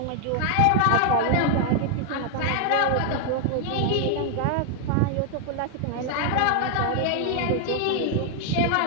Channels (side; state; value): both; different; correlation 0.00